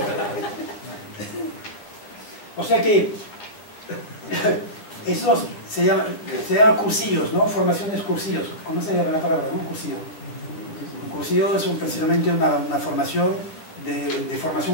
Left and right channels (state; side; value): late; right; 9.5 ms